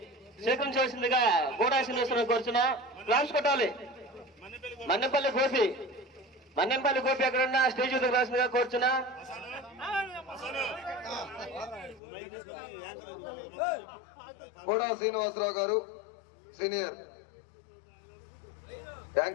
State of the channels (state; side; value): drops out; right; at 12.0 s